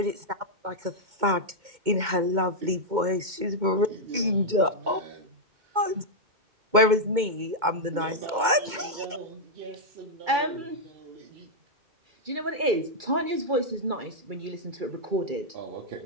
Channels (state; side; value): late; left; 2.2 ms